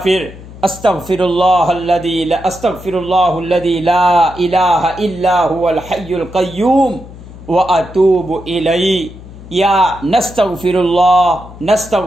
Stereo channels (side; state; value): left; noise; hum, 17 dB below the sound